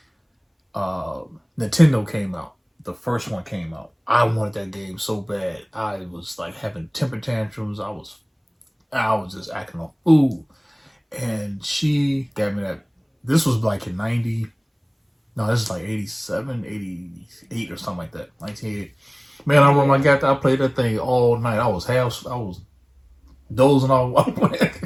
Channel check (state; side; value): identical; both; correlation 1.00